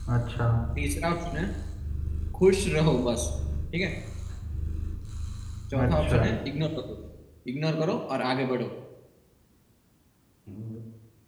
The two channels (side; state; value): both; identical; correlation 1.00